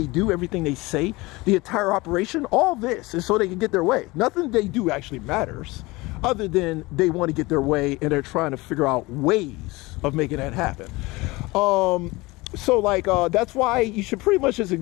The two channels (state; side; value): quieter; right; 22.2 dB